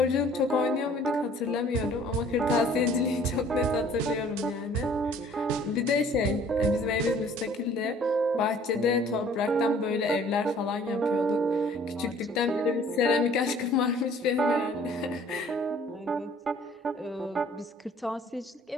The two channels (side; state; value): both; normal; correlation 0.55